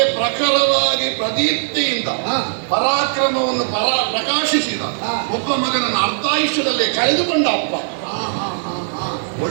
ಪ್ರಖರವಾಗಿ ಪ್ರದೀಪ್ತಿಯಿಂದ ಪರಾಕ್ರಮವನ್ನು ಪ್ರಕಾಶಿಸಿದ ಒಬ್ಬ ಮಗನನ್ನು ಅರ್ಧಾಯುಷ್ಯದಲ್ಲೇ ಕಳೆದುಕೊಂಡ ಅಪ್ಪ.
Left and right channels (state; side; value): silent; left; digital silence